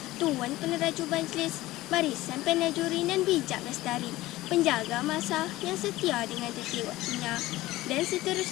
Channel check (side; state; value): right; quieter; 17.5 dB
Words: Tuan Peneraju Majlis, Barisan Penajuri dan Bijak Lestari, penjaga masa yang setia dengan tertib waktunya, dan